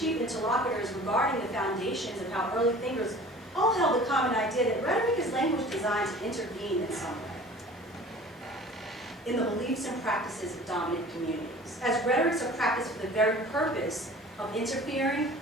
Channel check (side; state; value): both; normal; correlation 0.44